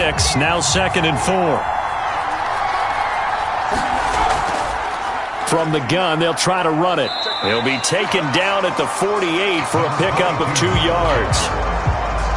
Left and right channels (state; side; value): identical; both; correlation 1.00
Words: now 2nd and 4. From the gun, they'll try to run it. He'll be taken down at the 48 for a pickup of 2 yards.